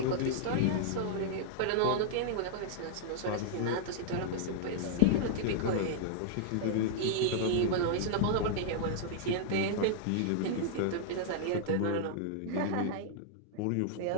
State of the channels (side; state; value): both; different; correlation -0.01